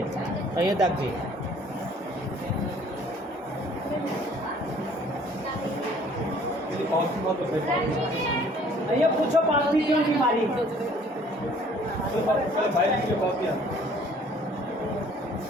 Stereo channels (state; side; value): normal; both; correlation 0.56